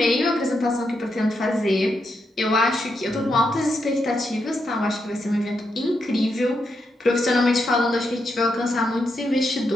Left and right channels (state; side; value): normal; both; correlation 0.83